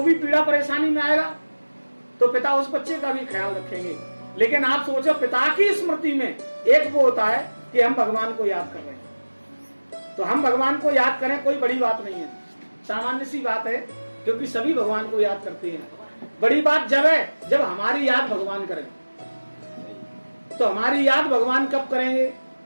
भी पीड़ा परेशानी में आएगा तो पिता उस बच्चे का भी ख्याल रखेंगे। लेकिन आप सोचो, पिता की स्मृति में एक वो होता है कि हम भगवान को याद कर रहे हैं, तो हम भगवान को याद करें कोई बड़ी बात नहीं है, सामान्य सी बात है, क्योंकि सभी भगवान को याद करते हैं। बड़ी बात जब है जब हमारी याद भगवान करें। तो हमारी याद भगवान कब करेंगे?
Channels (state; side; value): inverted; both; correlation -1.00